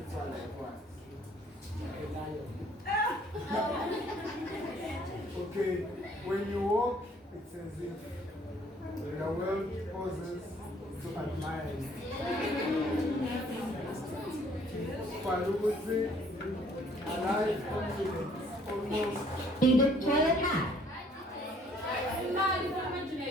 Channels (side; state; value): both; normal; correlation 0.60